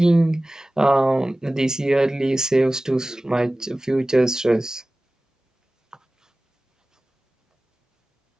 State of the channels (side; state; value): both; normal; correlation 0.97